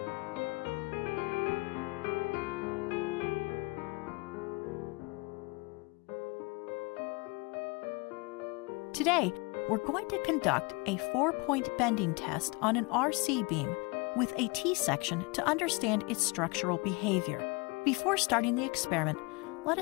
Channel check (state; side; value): quieter; right; 26.8 dB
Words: Today, we're going to conduct a 4-point bending test on an RC beam with a T-section to understand its structural behavior. Before starting the experiment, let